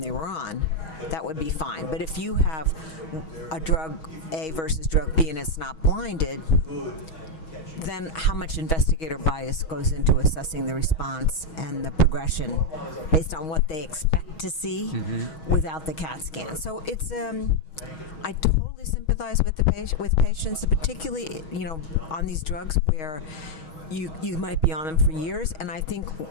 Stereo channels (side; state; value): right; late; 6.3 ms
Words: were on, that would be fine. But if you have a drug A versus drug B and it's not blinded, then how much investigator bias goes into assessing the response and the progression based on what they expect to see without the CAT scan? So it's I totally sympathize with with patients, particularly on these drugs where you might be on them for years, and I think,